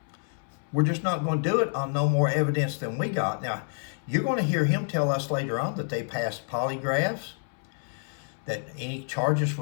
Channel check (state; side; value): silent; right; 59 dB below the other